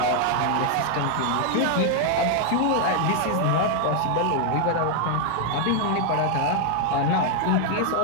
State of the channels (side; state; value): both; different; correlation 0.00